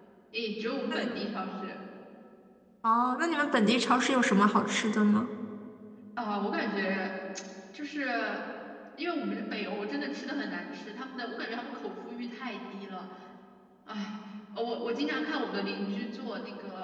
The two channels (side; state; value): both; identical; correlation 1.00